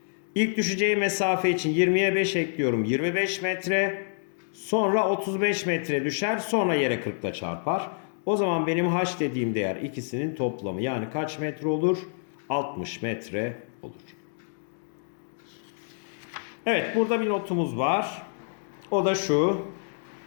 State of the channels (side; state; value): right; silent; digital silence